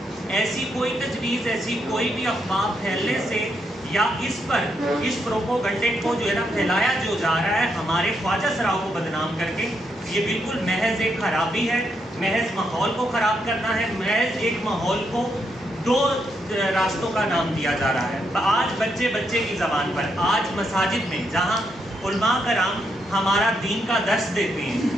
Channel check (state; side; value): normal; both; correlation 0.79